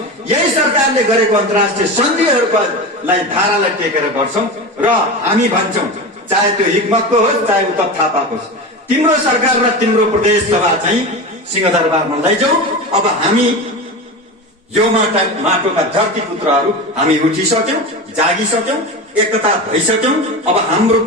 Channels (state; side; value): normal; both; correlation 0.25